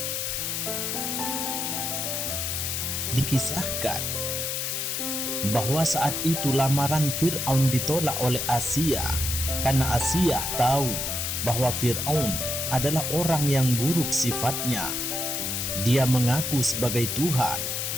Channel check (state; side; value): noise; left; hiss, 1 dB below the sound